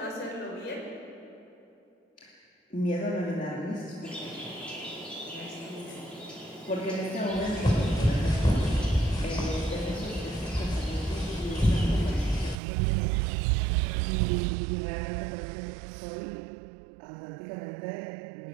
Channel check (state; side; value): drops out; left; at 12.6 s